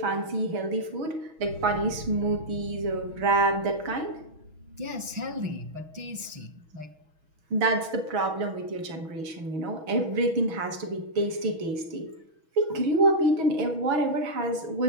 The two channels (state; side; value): late; left; 6.2 ms